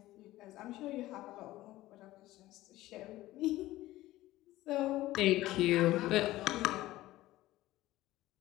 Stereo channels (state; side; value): quieter; right; 16.5 dB